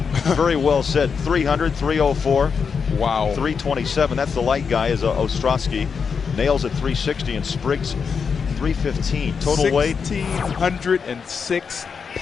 very well said. 300, 304. Wow. 327. That's the light guy, is Ostrowski. Nails at 360 and Spriggs 315. Total weight 1,606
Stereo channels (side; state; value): right; quieter; 6.0 dB